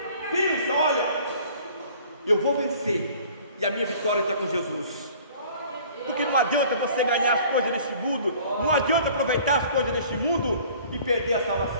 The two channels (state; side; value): inverted; both; correlation -0.51